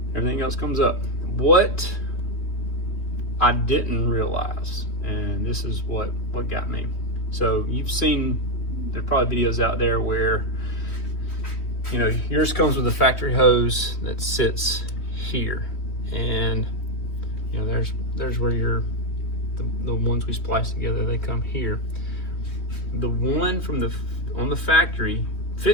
everything else comes up. What I didn't realize, and this is what got me. So you've seen, there's probably videos out there where, yours comes with a factory hose that sits here, and there's where the ones we splice together, they come here. The one on the factory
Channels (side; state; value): right; late; 3.1 ms